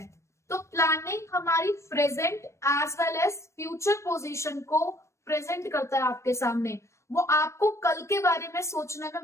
तो प्लानिंग हमारी present as well as future position को प्रेजेंट करता है आपके सामने। वो आपको कल के बारे में सोचने में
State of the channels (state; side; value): late; right; 0.14 ms